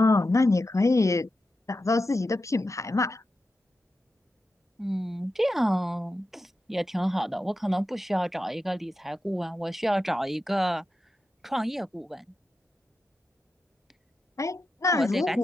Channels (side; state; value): both; normal; correlation 0.90